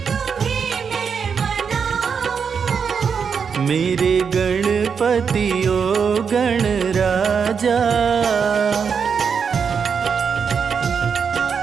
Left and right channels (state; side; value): quieter; left; 6.4 dB